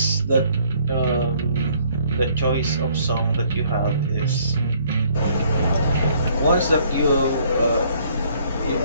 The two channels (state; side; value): inverted; both; correlation -0.63